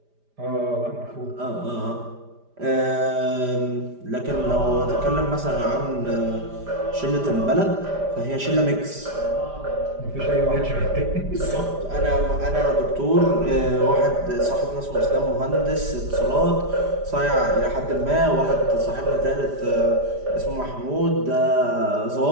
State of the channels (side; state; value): left; late; 5.0 ms